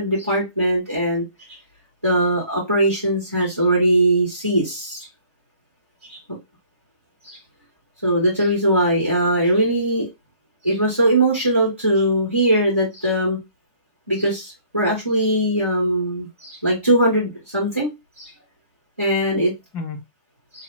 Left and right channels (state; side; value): inverted; both; correlation -0.57